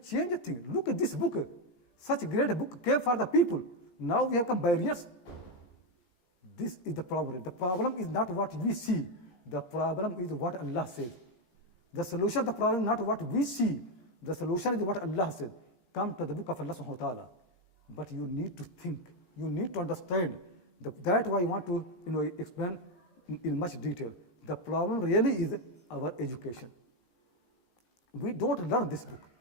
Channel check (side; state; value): right; late; 17 ms